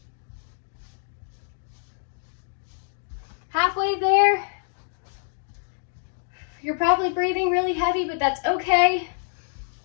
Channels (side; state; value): right; silent; 61 dB below the other